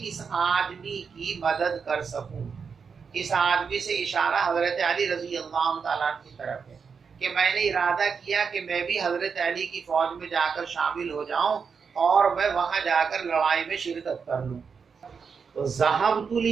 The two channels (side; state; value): left; quieter; 5.9 dB